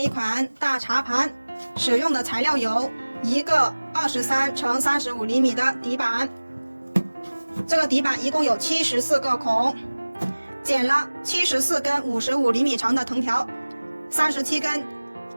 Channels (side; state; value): both; inverted; correlation -1.00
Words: 款大茶盘使用的材料有一个23乘35厘米的底板，这个底板一共有74个孔，剪了74根55厘米长的藤条，37根